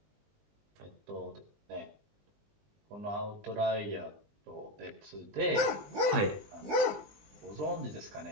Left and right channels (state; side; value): late; left; 20 ms